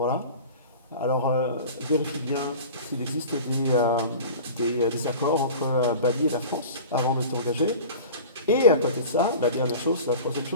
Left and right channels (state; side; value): inverted; both; correlation -0.37